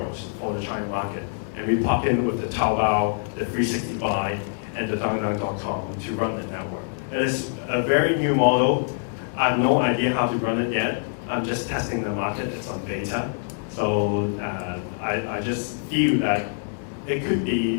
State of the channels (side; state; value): right; silent; digital silence